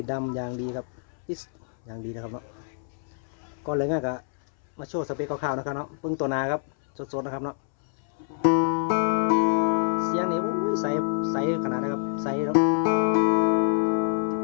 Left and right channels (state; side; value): silent; right; 61 dB below the other